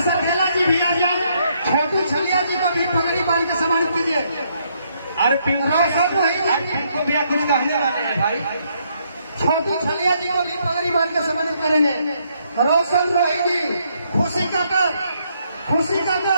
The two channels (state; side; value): inverted; both; correlation -0.72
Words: सरखेला जी भी आ जाए, छोटू छलिया जी का भी पगड़ी बांध के सम्मानित कीजिए। अरे पिंको भैया कुछ कहने वाले हैं भाई। छोटू छलिया जी को भी पगड़ी बांध के सम्मानित करेंगे। रोशन रोही जी, खुशी काकर